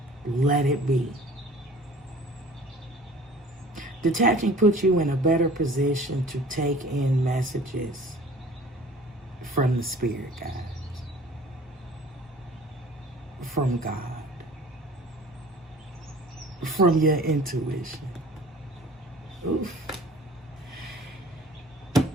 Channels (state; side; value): normal; both; correlation 0.47